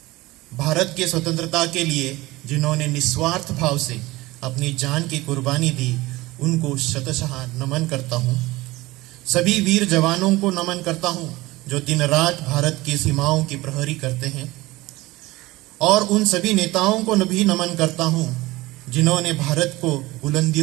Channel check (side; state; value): left; quieter; 19.7 dB